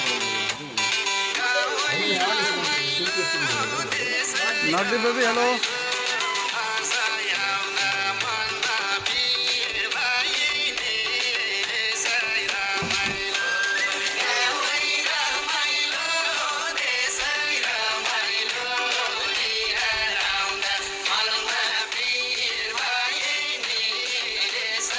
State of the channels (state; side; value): identical; both; correlation 1.00